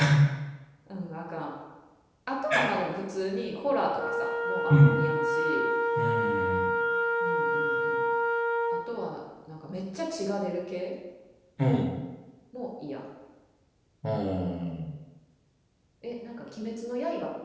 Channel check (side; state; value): both; identical; correlation 1.00